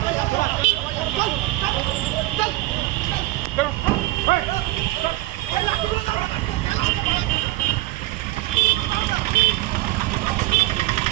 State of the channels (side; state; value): left; quieter; 18.5 dB